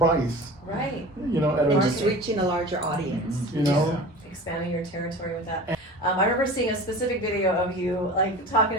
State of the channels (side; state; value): both; normal; correlation 0.37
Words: Right. You know, And just reaching a larger audience. You know, expanding your territory with that. I remember seeing a specific video of you like